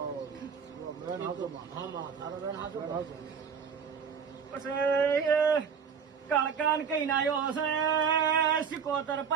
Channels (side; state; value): left; quieter; 6.6 dB